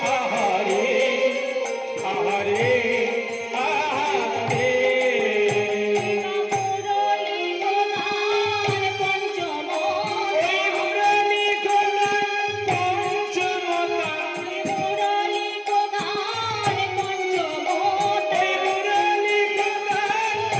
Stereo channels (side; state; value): both; identical; correlation 1.00